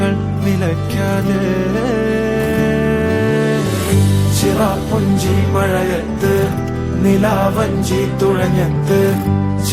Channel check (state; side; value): identical; both; correlation 1.00